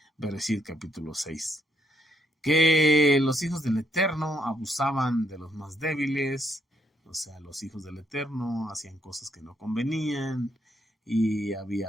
Bereshit capítulo 6, que los hijos del Eterno abusaban de los más débiles, o sea, los hijos del Eterno hacían cosas que no convenían y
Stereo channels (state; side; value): normal; both; correlation 0.74